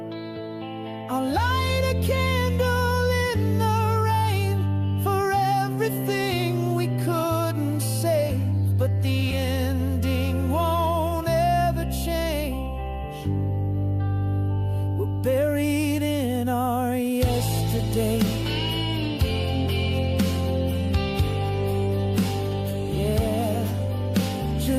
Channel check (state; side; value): identical; both; correlation 1.00